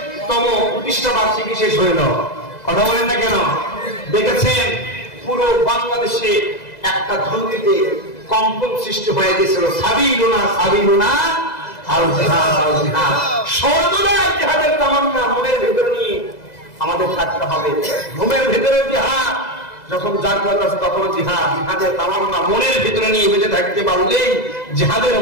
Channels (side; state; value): right; late; 2.0 ms